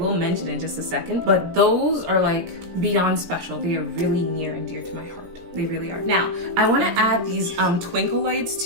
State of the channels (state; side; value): late; left; 17 ms